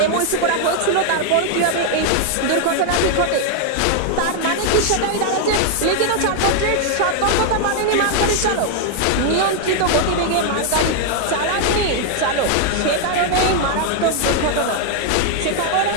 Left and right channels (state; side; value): different; both; correlation 0.00